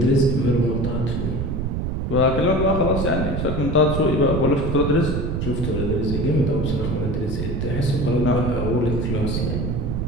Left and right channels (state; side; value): noise; right; rumble, 1 dB below the sound